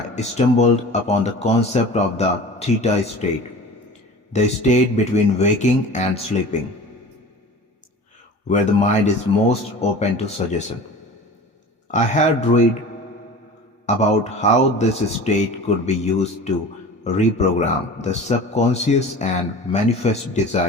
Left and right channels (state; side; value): normal; both; correlation 0.39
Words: stumbled upon the concept of the Theta State, the state between waking and sleeping, where the mind is most open to suggestion. I had read about how this state could be used to reprogram the subconscious and manifest